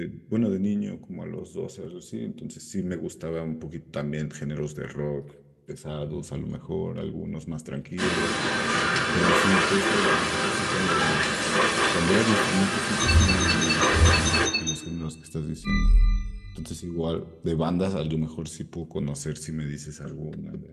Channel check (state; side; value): identical; both; correlation 1.00